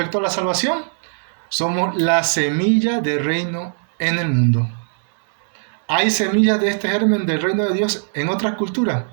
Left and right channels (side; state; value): left; silent; digital silence